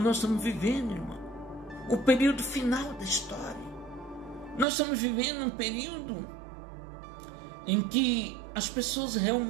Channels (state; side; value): drops out; left; at 4.7 s